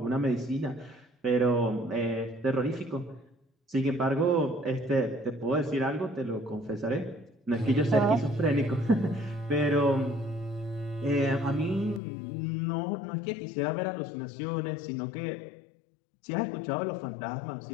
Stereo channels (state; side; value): drops out; right; at 12.0 s